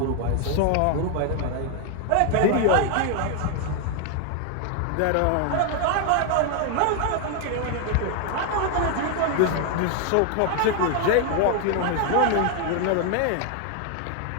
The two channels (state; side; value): different; both; correlation 0.00